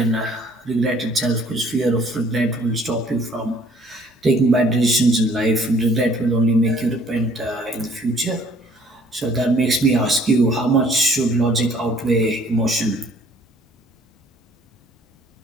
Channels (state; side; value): normal; both; correlation 0.57